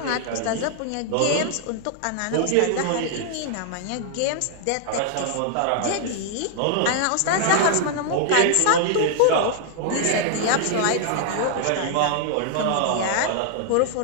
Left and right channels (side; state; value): both; different; correlation 0.00